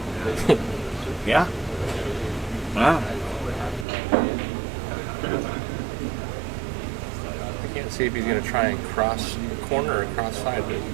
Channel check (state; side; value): drops out; left; at 3.9 s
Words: Yeah. Wow. I can't see if he's going to try and cross the corner or cross sideways.